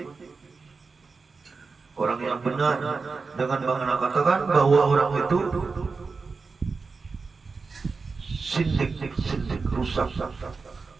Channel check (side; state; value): left; quieter; 4.5 dB